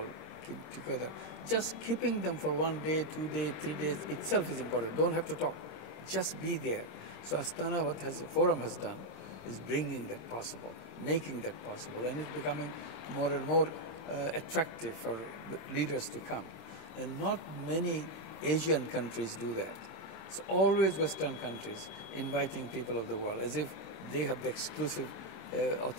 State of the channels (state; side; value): late; right; 26 ms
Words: keep together. Just keeping them for 1 day, 2 days, 3 days itself is important. Don't have to talk. Just be there. So Astana, what has the forum has done, is bringing that possible, making that possible, and it's becoming more and more attractive for leaders to come. And not many Asian countries do that. It's always Western countries inviting people of the world as if they have the exclusive